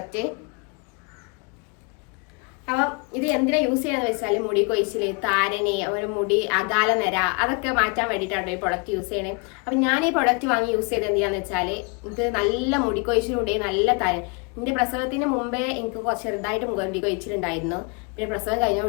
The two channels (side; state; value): right; quieter; 32.9 dB